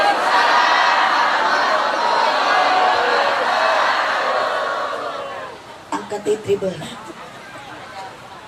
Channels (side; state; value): both; identical; correlation 1.00